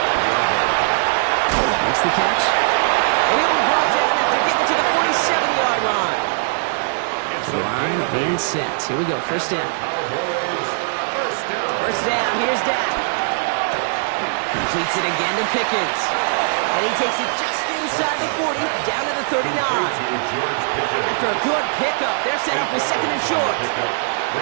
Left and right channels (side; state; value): left; silent; 66 dB below the other